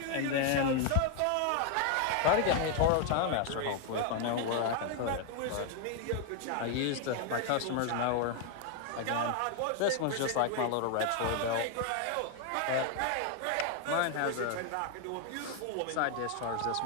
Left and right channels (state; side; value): different; both; correlation 0.01